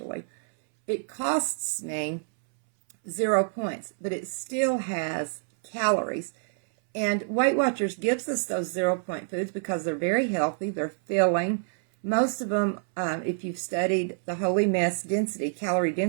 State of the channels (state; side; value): silent; left; 60 dB below the other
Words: It costs me 0 points, but it still has calories. And Weight Watchers gives us those 0-point foods because they're very healthy, they're filling. Most of them, if you've studied the Holy Mess density, calorie